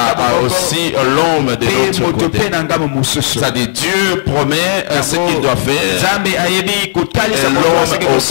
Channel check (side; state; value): right; silent; digital silence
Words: aussi l'homme de l'autre côté. C'est-à-dire Dieu promet ce qu'il doit faire et l'homme